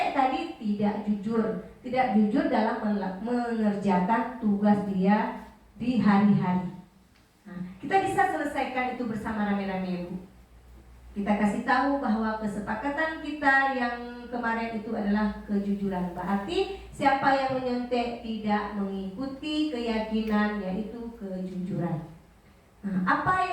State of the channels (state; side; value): identical; both; correlation 1.00